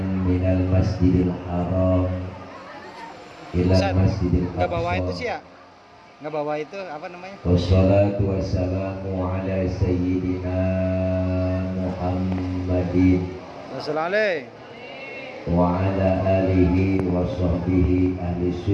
minal masjidil haram ila masjidil aqsa. Nggak bawa itu sih ya? Nggak bawa itu apa namanya? Wassalatu wassalamu ala sayyidina Muhammadin Wassalamualaikum. wa ala alihi wa sahbihi ahli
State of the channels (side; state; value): both; identical; correlation 1.00